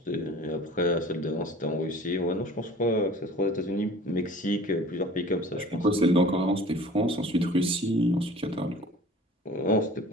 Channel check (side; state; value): both; normal; correlation 0.45